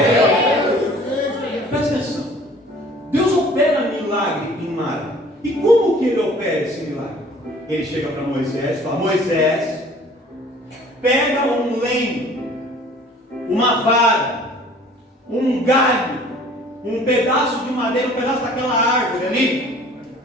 Presta atenção. Deus opera milagre em Mara. E como que Ele opera esse milagre? Ele chega para Moisés e fala: Moisés, pega um lenho, uma vara, um galho, um pedaço de madeira, um pedaço daquela árvore ali,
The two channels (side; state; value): both; normal; correlation 0.51